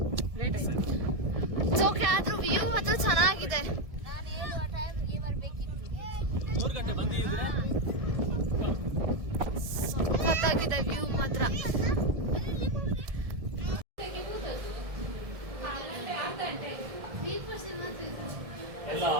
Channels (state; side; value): late; left; 1.7 ms